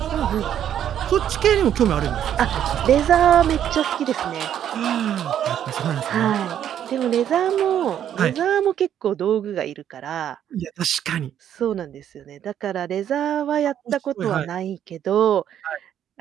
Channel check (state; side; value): quieter; left; 10.1 dB